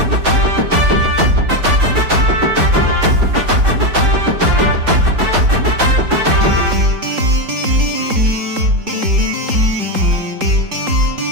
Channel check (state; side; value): late; left; 3.8 ms